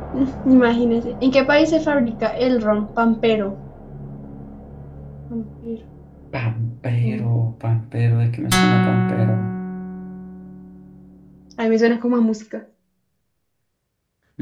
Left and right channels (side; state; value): both; identical; correlation 1.00